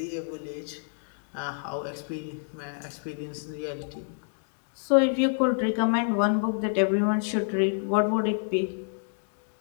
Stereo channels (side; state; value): right; silent; digital silence